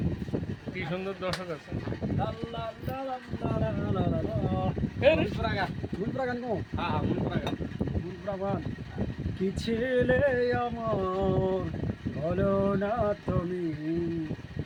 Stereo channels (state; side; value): identical; both; correlation 1.00